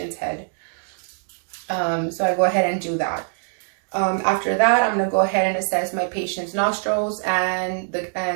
head. So I go ahead and do that. After that, I'm going to go ahead and assess my patient's nostrils and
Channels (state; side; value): silent; left; 63 dB below the other